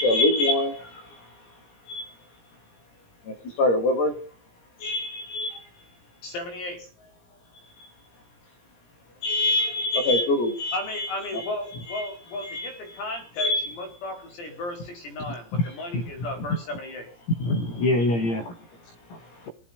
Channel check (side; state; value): right; late; 17 ms